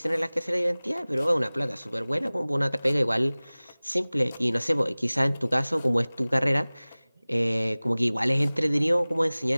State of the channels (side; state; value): both; inverted; correlation -0.99